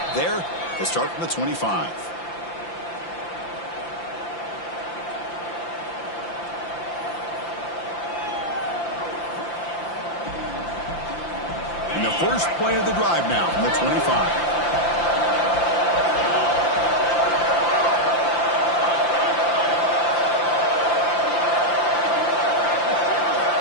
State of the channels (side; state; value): right; late; 5.8 ms